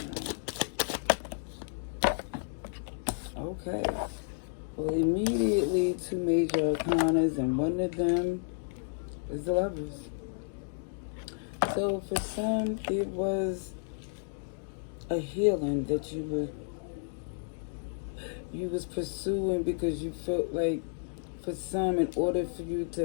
Okay. Well, immediately two major arcanas, and one of them is the Lovers. So for some, it was a healing that you was pursuing because you felt like, for some, in order for you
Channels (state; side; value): silent; right; digital silence